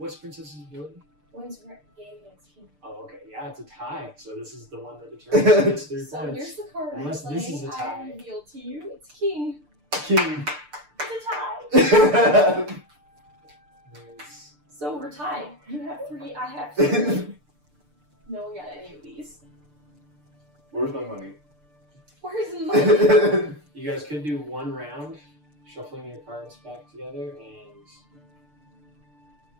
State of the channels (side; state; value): left; late; 6.7 ms